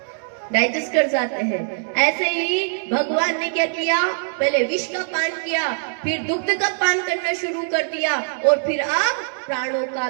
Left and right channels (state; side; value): silent; left; digital silence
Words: डाइजेस्ट कर जाते हैं। ऐसे ही भगवान ने क्या किया, पहले विष का पान किया, फिर दुग्ध का पान करना शुरू कर दिया, और फिर अब प्राणों का